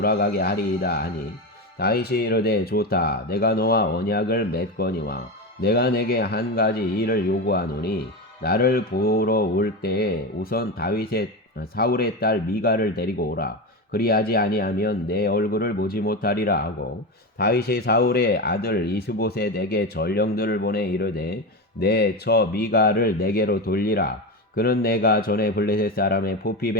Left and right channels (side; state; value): both; normal; correlation 0.19